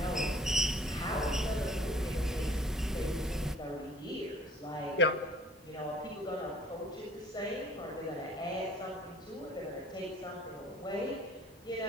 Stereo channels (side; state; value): both; normal; correlation 0.53